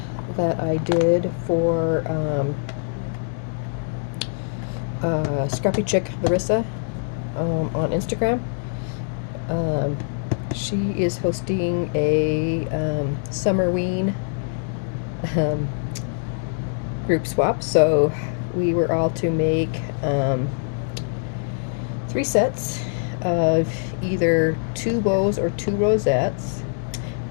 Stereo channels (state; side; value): silent; right; digital silence